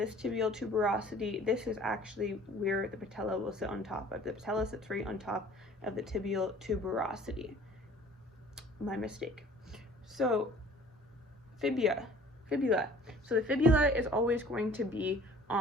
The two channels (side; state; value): both; normal; correlation 0.50